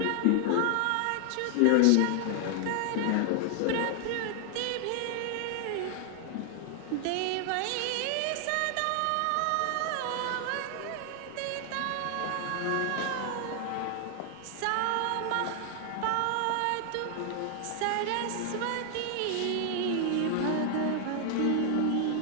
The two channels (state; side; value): different; both; correlation 0.00